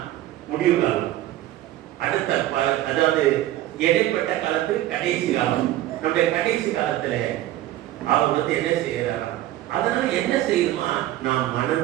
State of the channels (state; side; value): quieter; left; 14.5 dB